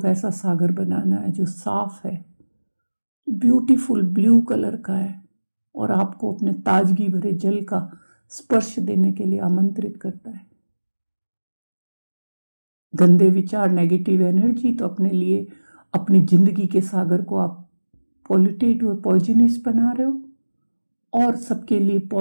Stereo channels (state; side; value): inverted; both; correlation -1.00